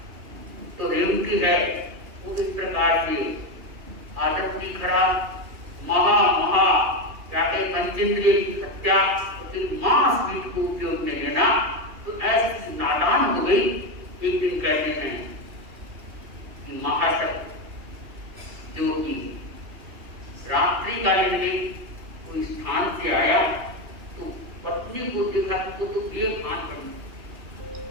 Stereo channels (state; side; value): late; left; 2.8 ms